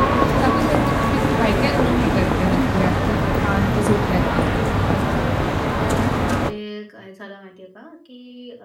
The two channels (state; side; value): identical; both; correlation 1.00